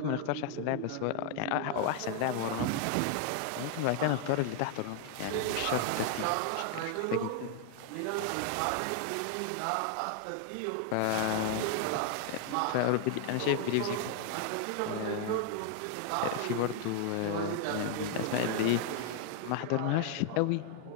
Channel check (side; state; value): both; different; correlation 0.00